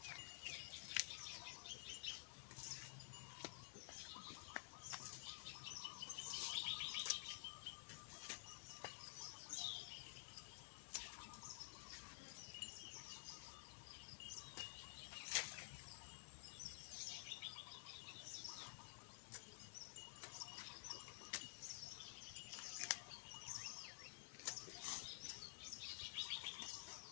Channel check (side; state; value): right; silent; digital silence